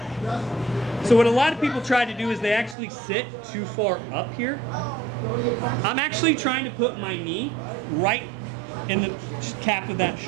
So what a lot of people try to do is they actually sit too far up here. I'm actually trying to put my knee right in the cap of that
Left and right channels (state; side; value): drops out; left; at 2.8 s